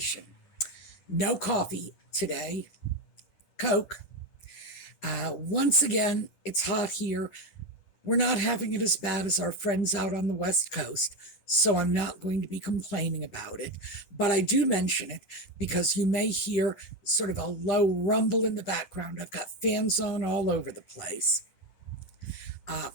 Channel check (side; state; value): right; late; 10 ms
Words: No coffee today, Coke. Once again, it's hot here. We're not having it as bad as our friends out on the West Coast, so I'm not going to be complaining about it. But I do mention it because you may hear sort of a low rumble in the background. I've got fans on all over the place.